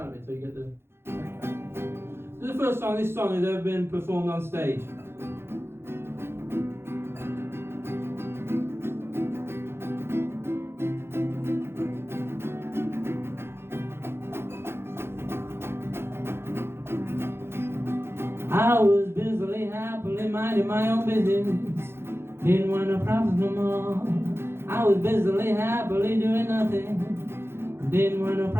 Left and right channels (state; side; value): late; left; 0.12 ms